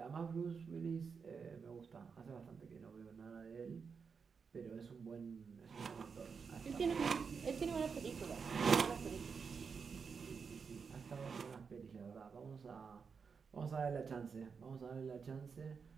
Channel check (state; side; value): quieter; left; 5.7 dB